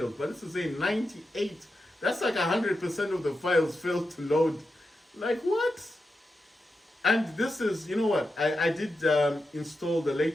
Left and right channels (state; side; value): normal; both; correlation 0.89